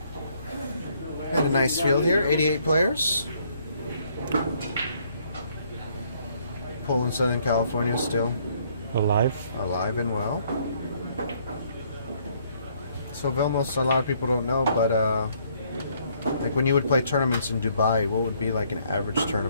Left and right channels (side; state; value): both; inverted; correlation -0.66